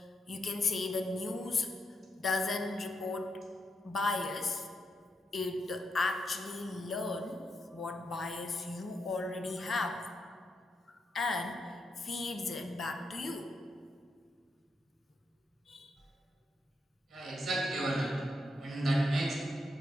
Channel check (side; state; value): both; normal; correlation 0.82